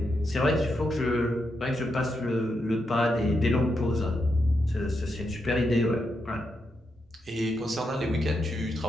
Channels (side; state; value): both; normal; correlation 0.83